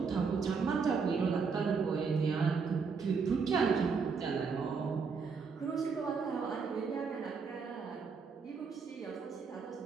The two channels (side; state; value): left; quieter; 5.4 dB